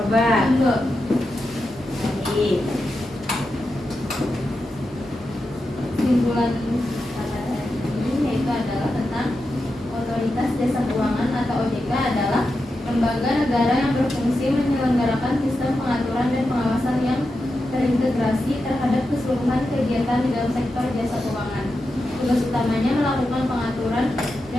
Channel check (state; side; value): normal; both; correlation 0.89